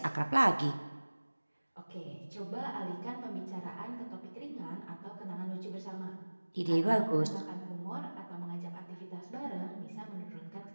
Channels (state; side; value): inverted; both; correlation -1.00